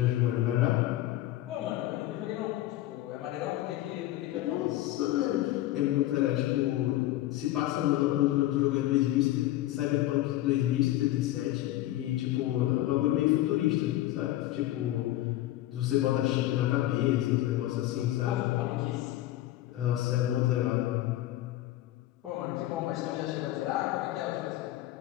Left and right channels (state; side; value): quieter; right; 15.1 dB